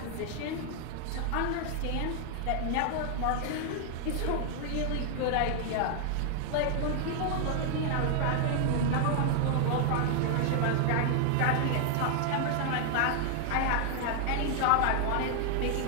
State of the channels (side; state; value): both; different; correlation 0.00